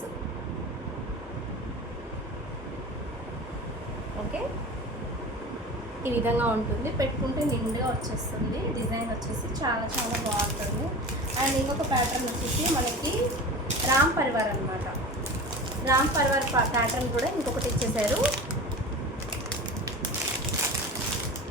ఓకే, ఈ విధంగా ఉంటుంది. పెట్టుకుంటే నిండుగా వచ్చేస్తుంది. డిజైన్ వచ్చేసి చాలా చాలా బాగుంటుంది. అండ్ ఇంకొక ప్యాటర్న్ వచ్చేసి మనకి రామ్ పరివార్ అనమాట. రామ్ పరివార్ ప్యాటర్న్ కూడా ఇంకొకటి ఇచ్చేసారు.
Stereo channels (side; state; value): both; normal; correlation 0.34